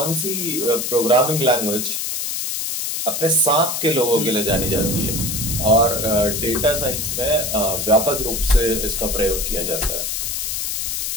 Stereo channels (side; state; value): left; noise; hiss, 2 dB below the sound